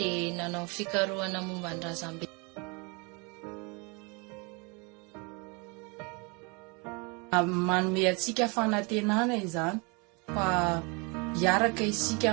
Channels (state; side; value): quieter; left; 30.5 dB